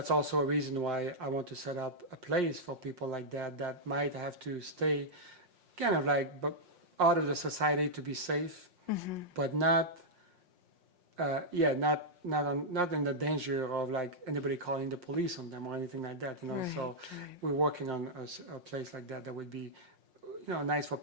also a reason why I want to set up a place for people like that might have to stay kind of like out of the society to be safe, but not not in the danger of like anybody calling the police on them or anything like that, Right, So right. we're working on a place like that would be, nice for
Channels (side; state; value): left; late; 5.6 ms